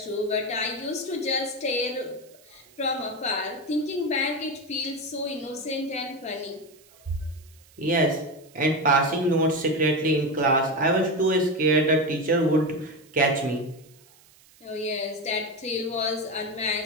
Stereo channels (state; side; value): noise; right; hiss, 27 dB below the sound